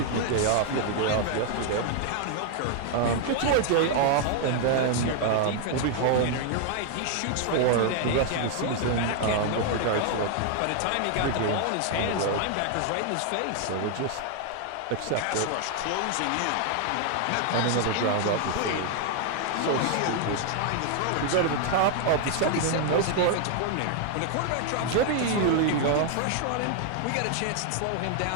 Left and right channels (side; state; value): both; different; correlation 0.00